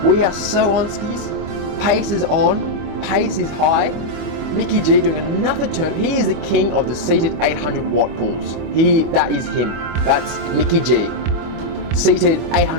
We are so on skis. Pace is on, pace is high. Mickey G doing another turn. He is the king of the seated 800 watt pulls. That is him. That's Mickey G. Seated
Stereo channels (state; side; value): late; left; 25 ms